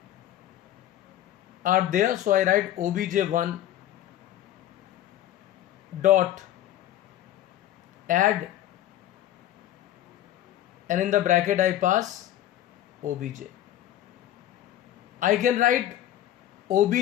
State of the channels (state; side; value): quieter; right; 12.5 dB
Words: are there, so I write obj1 dot add, and in the bracket I pass obj. I can write